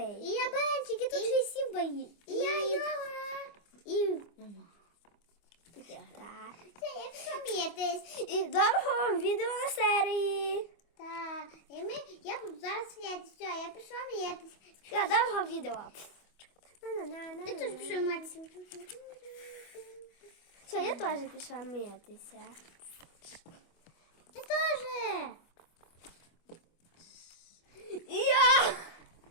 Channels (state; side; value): late; right; 25 ms